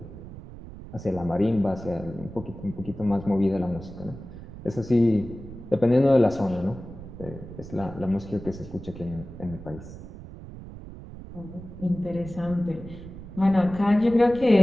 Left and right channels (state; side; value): noise; right; rumble, 13 dB below the sound